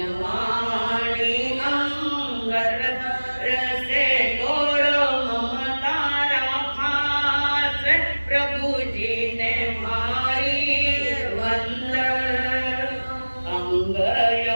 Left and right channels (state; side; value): inverted; both; correlation -1.00